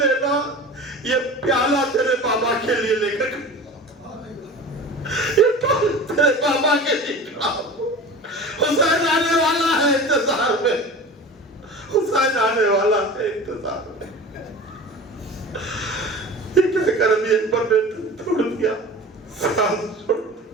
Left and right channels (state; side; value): normal; both; correlation 0.35